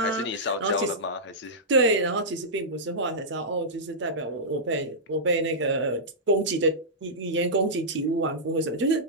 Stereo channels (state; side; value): normal; both; correlation -0.13